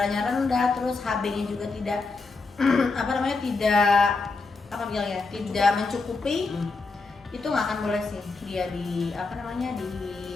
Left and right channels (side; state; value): right; quieter; 4.0 dB